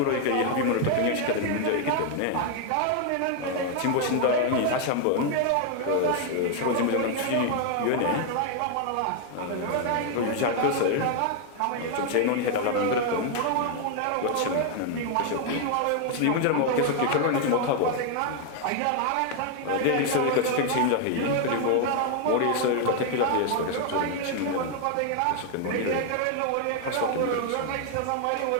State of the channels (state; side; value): different; both; correlation 0.00